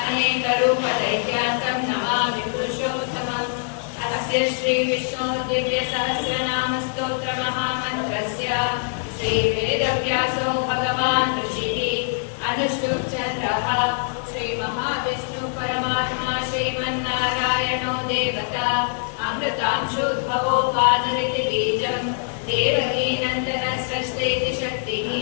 अनेकरूपदैत्यान्तं नमामि पुरुषोत्तमम्। अस्य श्रीविष्णोः दिव्यसहस्रनामस्तोत्रमहामन्त्रस्य श्रीवेदव्यासो भगवान् ऋषिः अनुष्टुप् चन्द्रः श्रीमहाविष्णु परमात्मा श्रीमन्नारायणो देवता अमृतांशोद्भवो पादरिति बीजं देवकी नन्दनसृष्टेति शक्तिः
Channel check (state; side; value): silent; right; 62 dB below the other